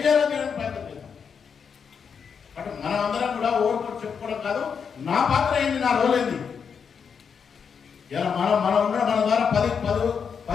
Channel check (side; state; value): right; quieter; 6.5 dB